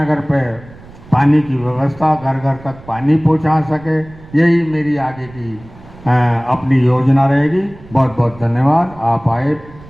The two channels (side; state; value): right; noise; rumble, 21 dB below the sound